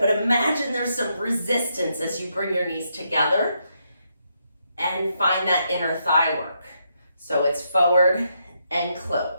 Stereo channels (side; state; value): both; inverted; correlation -0.79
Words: imagine there's some resistance as you bring your knees together and find that inner thigh work. So it's forward and